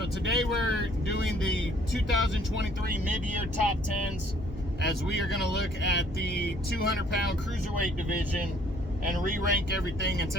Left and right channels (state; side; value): normal; both; correlation 0.60